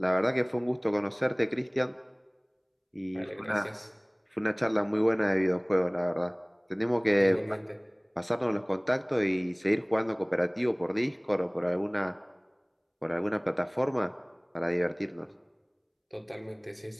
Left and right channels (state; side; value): identical; both; correlation 1.00